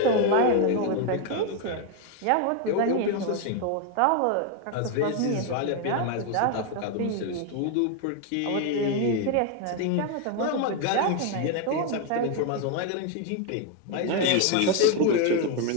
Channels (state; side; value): different; both; correlation 0.01